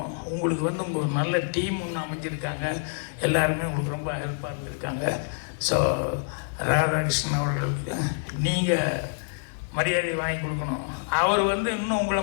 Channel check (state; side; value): silent; right; 56 dB below the other